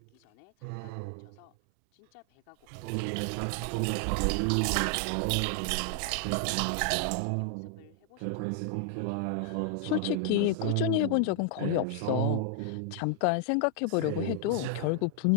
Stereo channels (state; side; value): different; both; correlation 0.00